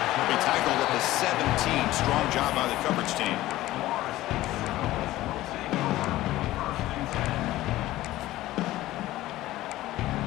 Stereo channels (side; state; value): right; quieter; 16.1 dB